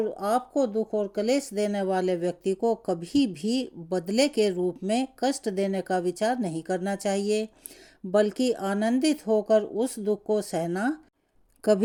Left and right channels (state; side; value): identical; both; correlation 1.00